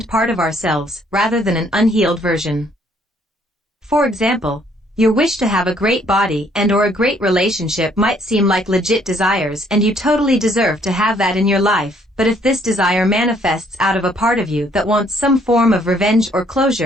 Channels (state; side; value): normal; both; correlation 0.65